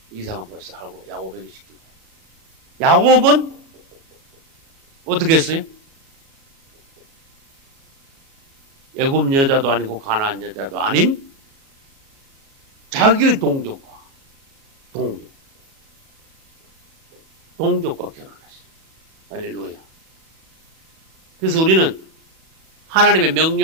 이삭은 벌써 하고 야곱에게 시키고. 야곱은 어떻게 했어요? 애굽 여자도 아니고 가나안 여자도 아닌 자기의 동족과 결혼했어요. 할렐루야. 그래서 우리는 하나님의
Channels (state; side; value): late; left; 37 ms